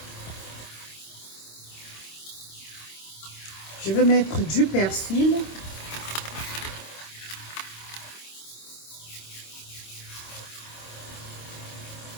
Je vais mettre du persil.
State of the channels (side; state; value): right; late; 26 ms